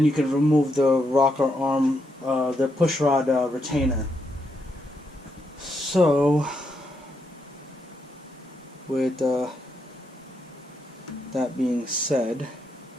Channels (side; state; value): both; normal; correlation 0.80